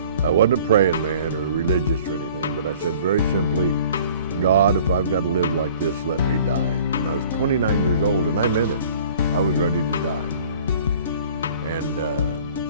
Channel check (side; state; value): both; inverted; correlation -0.50